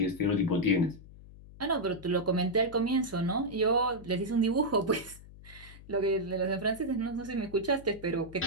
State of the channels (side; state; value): left; noise; hum, 19 dB below the sound